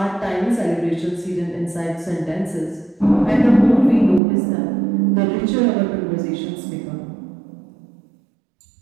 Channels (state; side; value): drops out; left; at 4.2 s